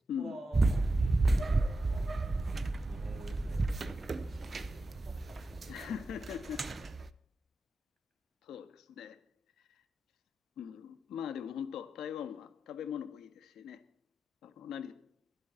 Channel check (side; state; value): both; normal; correlation 0.90